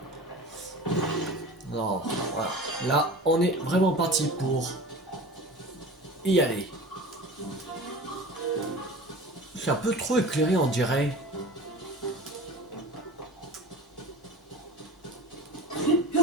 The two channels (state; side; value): normal; both; correlation 0.36